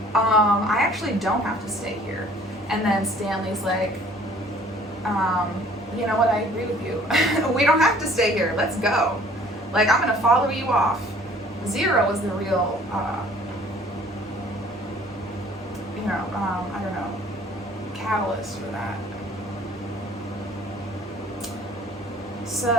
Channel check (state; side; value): normal; both; correlation 0.54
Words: I actually don't have to stay here. And then Stanley's like, you know what, I agree with you. We don't have to stay here, let's go. Like, I'm gonna follow you off. Zero was the real, I don't know, catalyst for that.